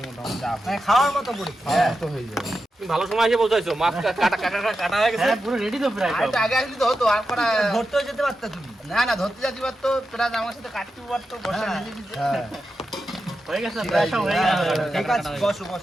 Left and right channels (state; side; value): normal; both; correlation 0.89